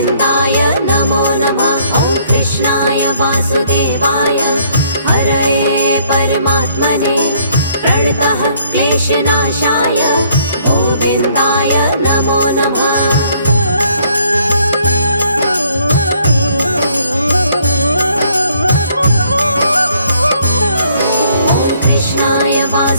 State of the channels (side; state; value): both; inverted; correlation -0.64